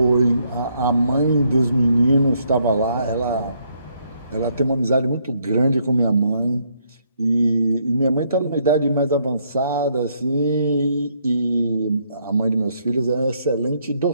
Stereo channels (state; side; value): inverted; both; correlation -0.72